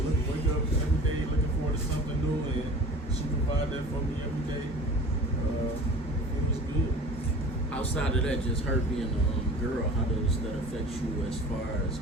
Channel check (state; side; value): normal; both; correlation 0.42